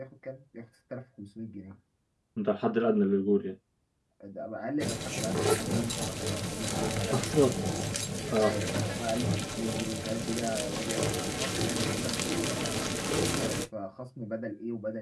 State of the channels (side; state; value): both; identical; correlation 1.00